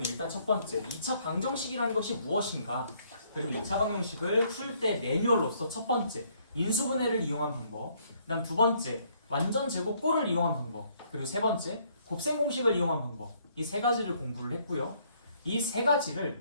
일단 첫 번째 2차 방정식이라는 것이 무엇인가, 그리고 2차 방정식을 풀 때 매뉴얼로서 첫 번째 인수분해를 이용한 방법, 그 다음 두 번째 완전 제곱꼴을 이용한 방법, 그리고 세 번째 곱셈 공식을 이용한 방법, 이 세 가지를 공부를 했고요. 이 세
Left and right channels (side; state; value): both; inverted; correlation -0.66